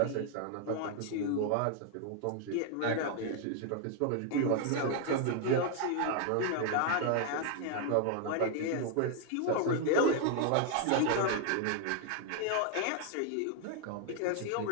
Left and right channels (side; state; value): both; different; correlation 0.00